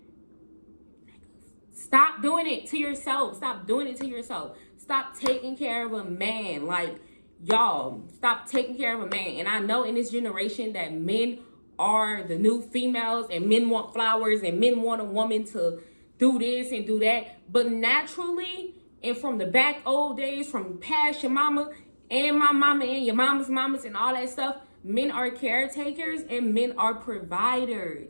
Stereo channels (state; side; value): inverted; both; correlation -1.00